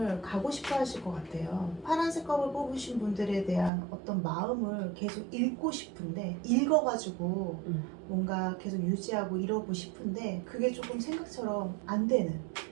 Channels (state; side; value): drops out; left; at 3.7 s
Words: 가고 싶어 하실 것 같아요. 파란색 컵을 뽑으신 분들에 대한 어떤 마음을 계속 읽고 싶은데, 읽어가지고 뭔가 계속 유지하고 이러고 싶은데 그게 조금 생각처럼 안 되는,